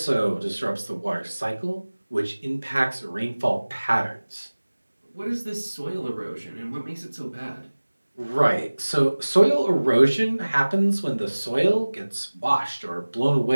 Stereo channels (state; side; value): inverted; both; correlation -1.00